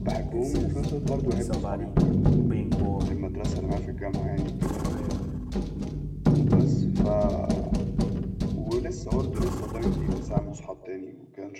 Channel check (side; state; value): both; identical; correlation 1.00